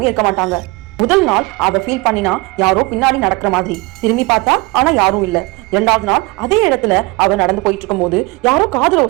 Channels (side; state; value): left; quieter; 24.5 dB